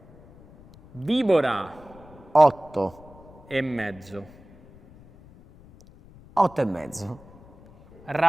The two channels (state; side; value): noise; left; rumble, 23 dB below the sound